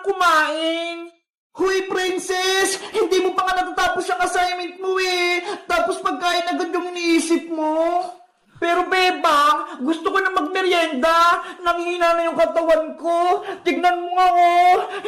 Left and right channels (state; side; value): identical; both; correlation 1.00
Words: kumain! Huy, princess! Hindi mo pa nga natatapos ang assignment mo eh! Tapos pagkain agad yung iniisip mo! Pero bebang, gusto ko na magmerienda. Nanghina na yung katawan ko. Tignan mo nga oh,